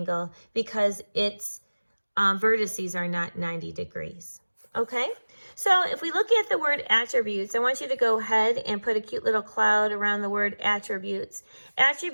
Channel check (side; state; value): both; inverted; correlation -1.00